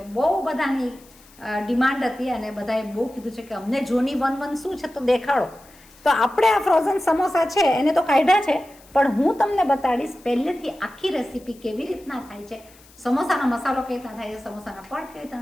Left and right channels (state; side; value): noise; left; hiss, 26 dB below the sound